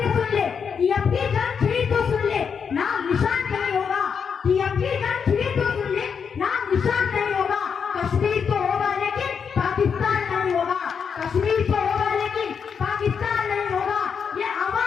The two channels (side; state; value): right; quieter; 6.5 dB